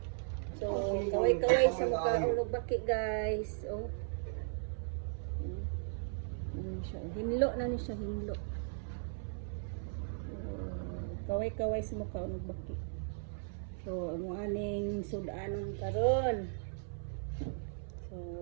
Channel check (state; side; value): silent; left; 53 dB below the other